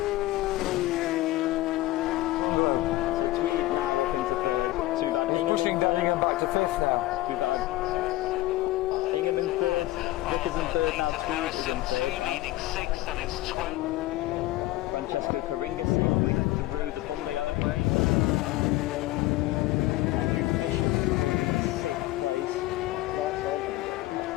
Francesco Karinga safely through the bungalow. Andrew Fisher's currently in 6th place.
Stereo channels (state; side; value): quieter; right; 17.4 dB